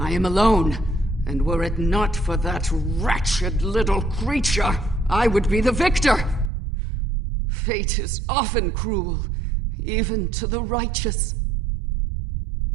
am alone, and were it not for that wretched little creature, I would be the victor. Fate is often cruel, even to the righteous.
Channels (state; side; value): drops out; left; at 6.5 s